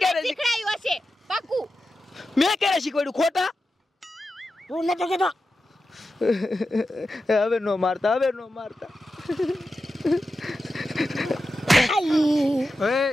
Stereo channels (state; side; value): normal; both; correlation 0.91